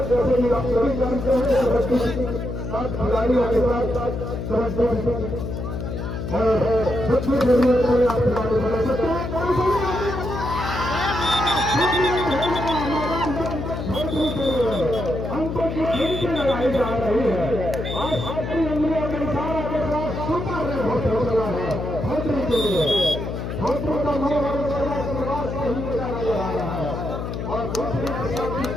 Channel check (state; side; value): noise; left; hum, 5 dB below the sound